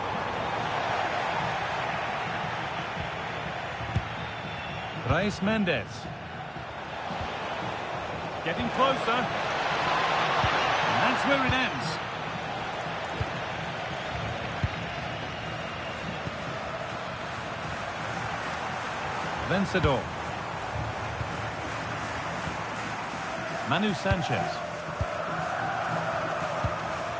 Reis Mendes. Getting closer. And that's where it ends. Vencedor. Manu Sanchez.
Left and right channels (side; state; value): both; identical; correlation 1.00